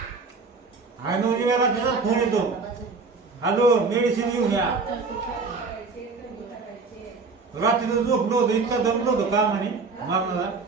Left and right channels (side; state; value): left; quieter; 4.3 dB